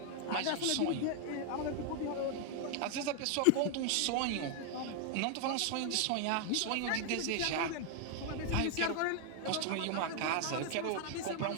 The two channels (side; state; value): both; different; correlation 0.00